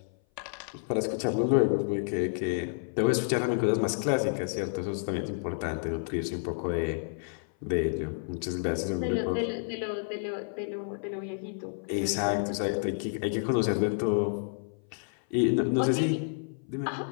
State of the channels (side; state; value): right; silent; 56 dB below the other